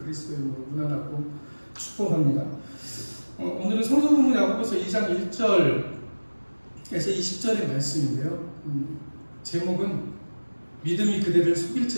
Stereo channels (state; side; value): inverted; both; correlation -1.00